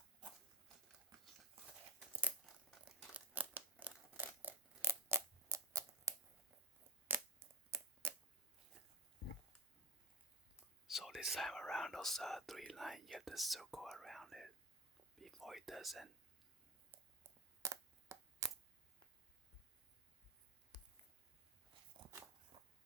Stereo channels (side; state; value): both; normal; correlation 0.22